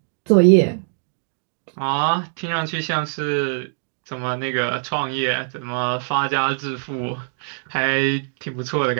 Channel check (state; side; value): silent; left; digital silence